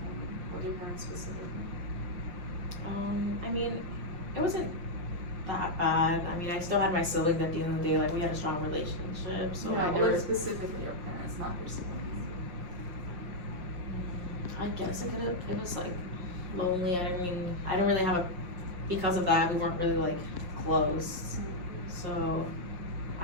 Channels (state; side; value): late; left; 5.6 ms